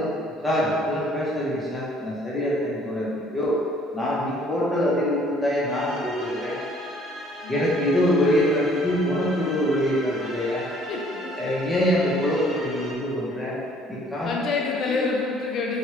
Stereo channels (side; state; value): both; normal; correlation 0.59